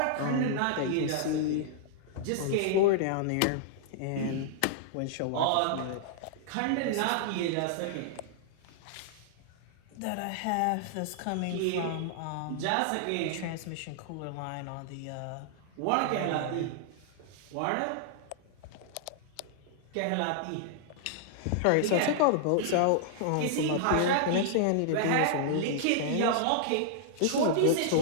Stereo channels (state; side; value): different; both; correlation -0.01